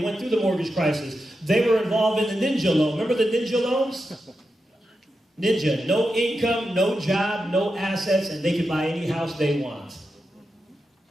went through the mortgage crisis. They were involved in the ninja loan. Remember the ninja loans? Ninja. No income, no job, no assets, and they could buy any house they want.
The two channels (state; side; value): normal; both; correlation 0.89